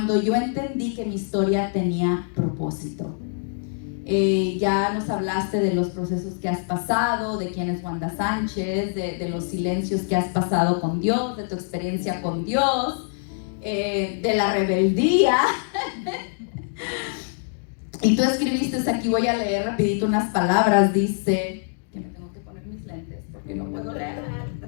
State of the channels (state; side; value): silent; right; 62 dB below the other